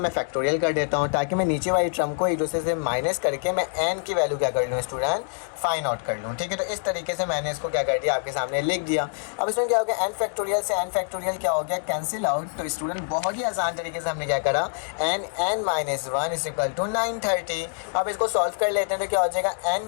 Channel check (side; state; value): right; silent; 61 dB below the other